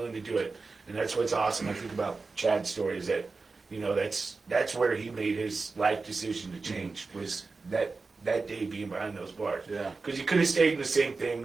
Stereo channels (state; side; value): quieter; left; 4.0 dB